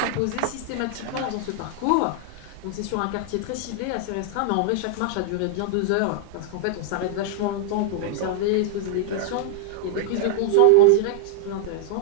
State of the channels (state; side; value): different; both; correlation -0.01